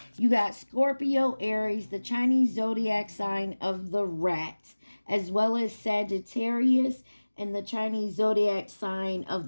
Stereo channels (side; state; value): both; inverted; correlation -1.00